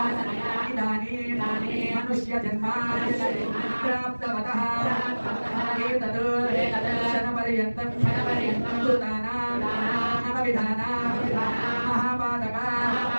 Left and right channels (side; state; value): both; inverted; correlation -1.00